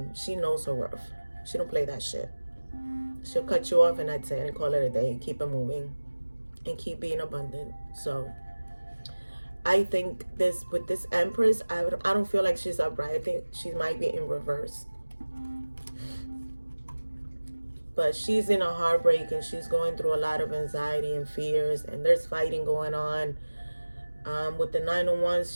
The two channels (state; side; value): inverted; both; correlation -1.00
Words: She knows her worth. She don't play that shit. She'll cut you off and that's it, and call it a day, and keep it moving and keep being abundant. So I think with this Empress, I don't feel like she's upright. I think she might be in reverse. But she's in a heartbreak, and she's going through a lot of anxiety and fears, and there's fighting going on. With the Nine of